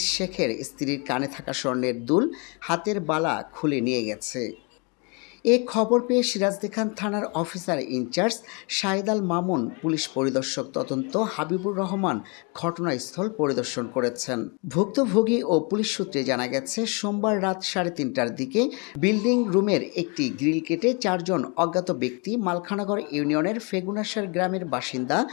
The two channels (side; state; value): right; quieter; 32.3 dB